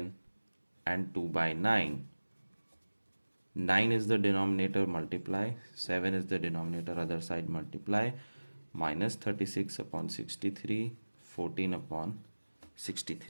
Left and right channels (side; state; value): both; inverted; correlation -1.00